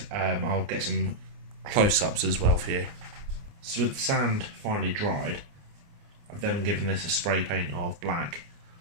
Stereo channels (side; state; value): left; late; 29 ms